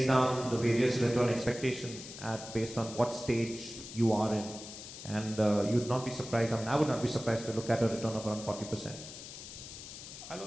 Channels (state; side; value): noise; left; hiss, 12 dB below the sound